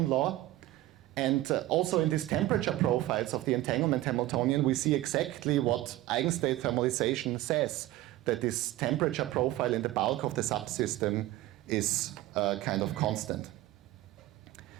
law. And also in these temperature profiles of the entanglement Hamiltonian, we see exactly what eigenstate thermalization says, that this temperature profile in the bulk of the subsystem is kind of constant.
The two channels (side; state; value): left; quieter; 16.2 dB